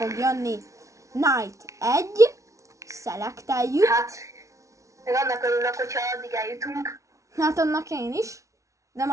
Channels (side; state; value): left; late; 0.15 ms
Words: jönni. Night 1, szelekteljük. Hát, meg annak örülök, hogyha addig eljutunk. Hát annak én is. De